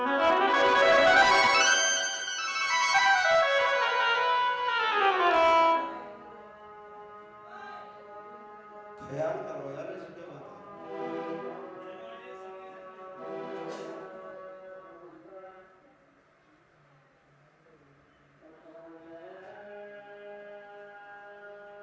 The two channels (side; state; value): both; identical; correlation 1.00